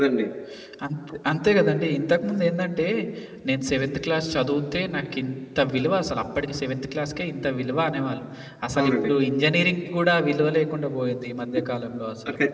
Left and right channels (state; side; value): identical; both; correlation 1.00